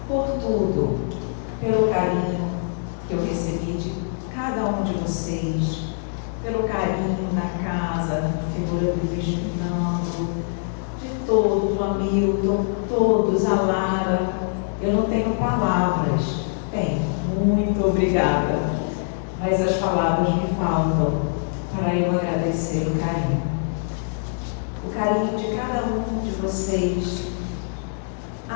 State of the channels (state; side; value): silent; right; digital silence